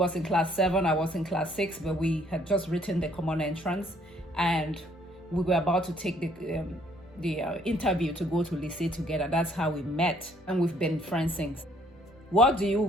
in class 7, I was in class 6, but we had just written the common entrance and we were about to take the interview to go to lycée together. That's how we met, and we've been friends since. What do you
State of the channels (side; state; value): both; normal; correlation 0.64